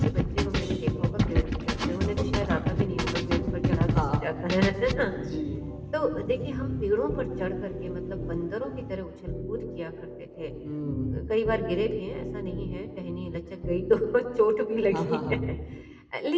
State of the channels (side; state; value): both; identical; correlation 1.00